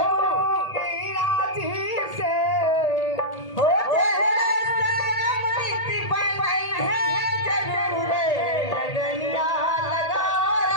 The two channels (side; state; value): right; late; 1.8 ms